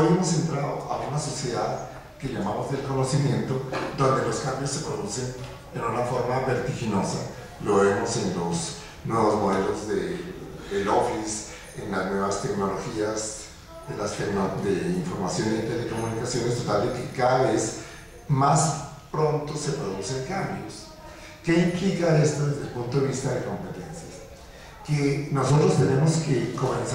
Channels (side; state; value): both; identical; correlation 1.00